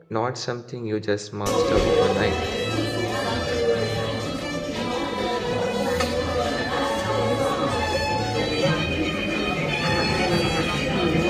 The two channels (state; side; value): identical; both; correlation 1.00